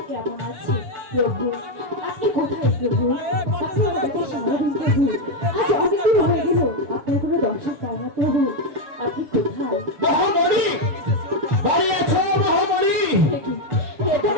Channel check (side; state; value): left; late; 6.7 ms